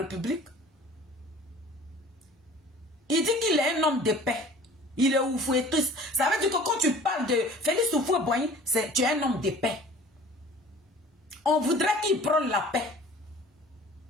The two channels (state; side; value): normal; both; correlation 0.47